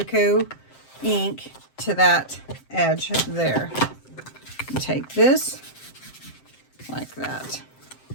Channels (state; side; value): late; right; 7.7 ms